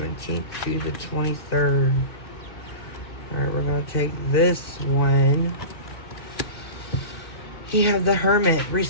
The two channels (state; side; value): late; right; 2.1 ms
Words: to the 23rd. Alright, we're going to take this one. You have the Hermit,